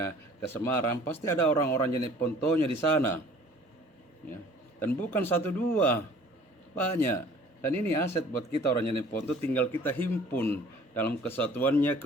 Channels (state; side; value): normal; both; correlation 0.51